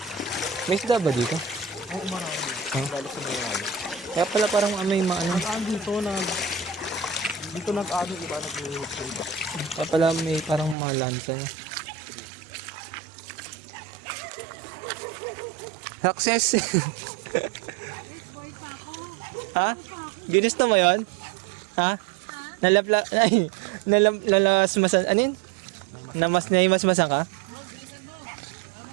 May isda ba dito? Oo, marami. Huh? Lalo sa Mayroon. Kaya pala parang may maano. Dito nag-ano, iba nag-trade. Kaya pala may parang mga lansa niya. Success! Ha? Ginusto mo yun? Ha? Nalasmasan, ano yun? Naimasmasan ka?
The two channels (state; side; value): drops out; left; at 10.8 s